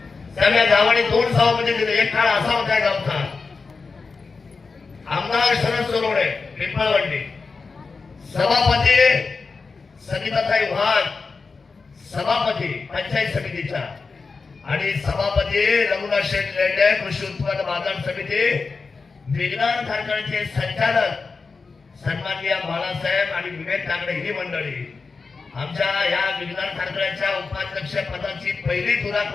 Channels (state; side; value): quieter; right; 4.5 dB